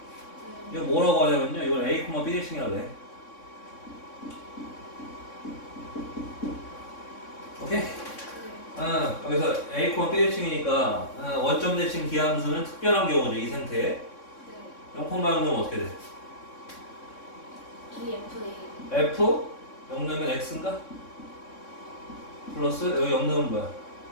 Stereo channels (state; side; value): late; right; 3.6 ms